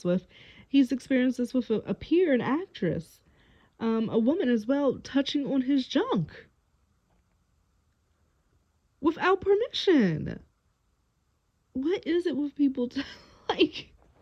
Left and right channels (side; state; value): both; identical; correlation 1.00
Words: with. He's experienced this with a peer, an actress, a woman as well, touching on his junk without permission. What is it with people like,